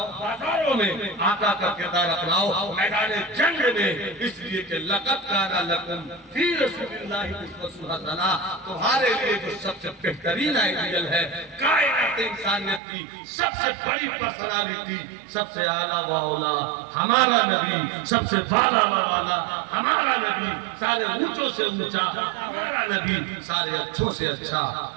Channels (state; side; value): drops out; left; at 12.8 s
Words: बाजारों में, आका का किरदार अपनाओ मैदान जंग में। इसलिए कि लक़द काना लकुम फी रसूलिल्लाहि उस्वतुन हसना, तुम्हारे लिए जो सबसे बेहतरीन आइडियल है कायनात इंसानियत की सबसे बड़ी पर्सनालिटी, सबसे आला व औला हमारा नबी, सबसे बाला व वाला हमारा नबी, सारे ऊंचों से ऊंचा हमारा नबी, सारे अच्छों से अच्छा